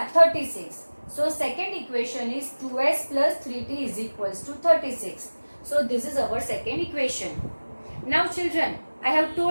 36. So second equation is 2s plus 3t is equals to 36. So this is our second equation. Now children, I have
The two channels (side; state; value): both; inverted; correlation -1.00